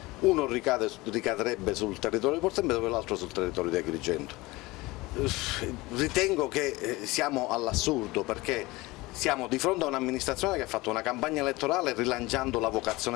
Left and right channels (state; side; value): quieter; right; 21.3 dB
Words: Uno ricadrebbe sul territorio di Porto Empedocle e l'altro sul territorio di Agrigento. Ritengo che siamo all'assurdo, perché siamo di fronte a un'amministrazione che ha fatto una campagna elettorale rilanciando la